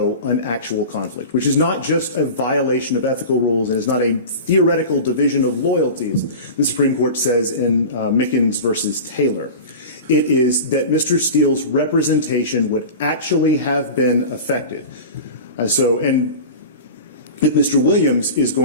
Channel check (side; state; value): both; inverted; correlation -0.32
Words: an actual conflict, which is not just a violation of ethical rules. It is not a theoretical division of loyalties, the Supreme Court says in Mickens versus Taylor. It is that Mr. Steele's representation would actually have been affected. And if Mr. Williams is